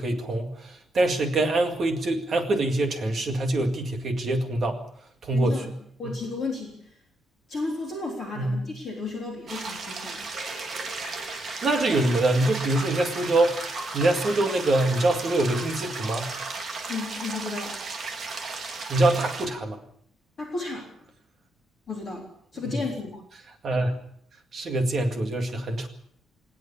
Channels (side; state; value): both; normal; correlation 0.80